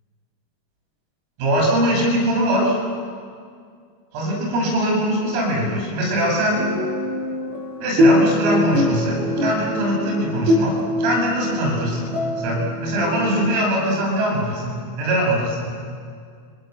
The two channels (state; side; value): late; left; 25 ms